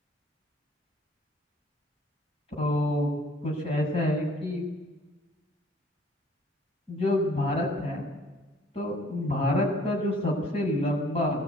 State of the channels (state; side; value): normal; both; correlation 0.57